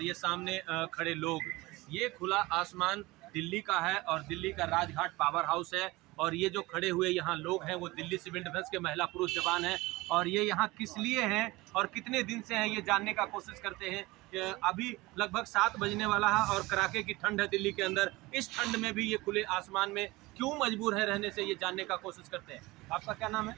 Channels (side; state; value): left; quieter; 21.1 dB